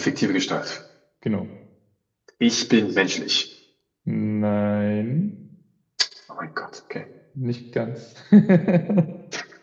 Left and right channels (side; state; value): both; identical; correlation 1.00